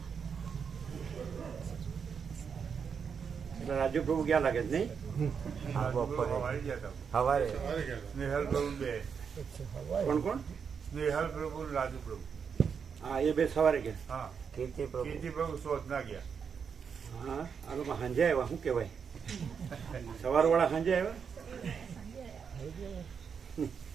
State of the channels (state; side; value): quieter; left; 6.5 dB